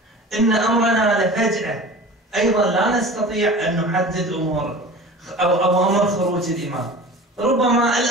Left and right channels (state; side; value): normal; both; correlation 0.38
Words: إن أمرنا لفجأة، أيضا لا نستطيع أن نحدد أمور أو أمر خروج الإمام. ربما